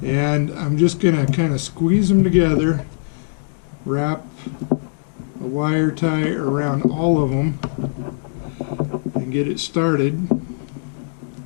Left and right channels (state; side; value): silent; right; digital silence